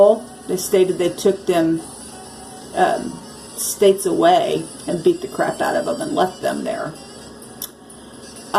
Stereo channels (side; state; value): both; identical; correlation 1.00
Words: They stated they took them states away and beat the crap out of them and left them there.